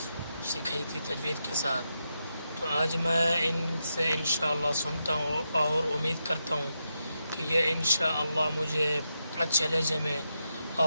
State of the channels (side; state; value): both; inverted; correlation -0.86